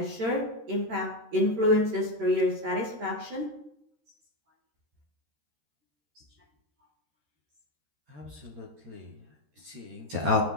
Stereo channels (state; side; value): late; left; 13 ms